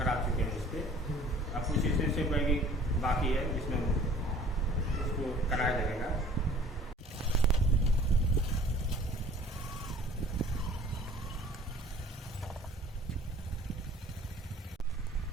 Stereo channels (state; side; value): normal; both; correlation 0.51